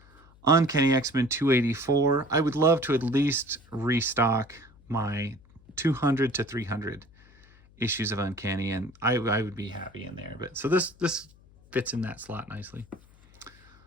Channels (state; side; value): noise; left; hum, 27 dB below the sound